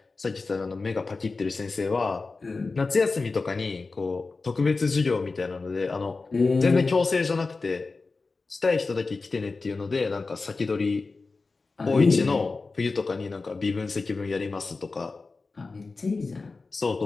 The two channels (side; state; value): right; quieter; 3.9 dB